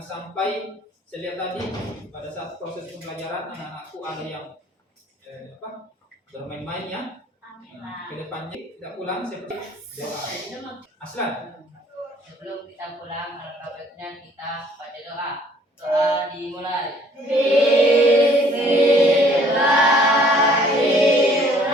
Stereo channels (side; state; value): both; normal; correlation 0.58